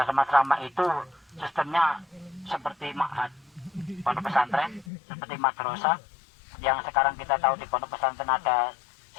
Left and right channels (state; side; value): drops out; right; at 4.9 s